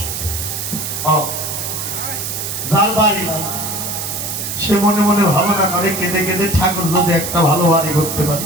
যার বাড়ি নাই সে মনে মনে ভাবনা করে কেঁদে কেঁদে, ঠাকুর যদি একটা ভালো বাড়ি করতে পারে।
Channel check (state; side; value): noise; right; hiss, 4 dB below the sound